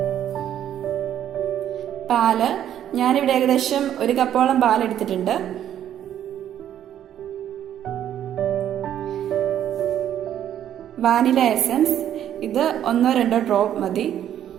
പാല്. ഞാനിവിടെ ഏകദേശം 1 കപ്പോളം പാലെടുത്തിട്ടുണ്ട്. Vanilla essence. ഇത് 1-2 ഡ്രോപ്പ് മതി.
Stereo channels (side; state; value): left; quieter; 10.6 dB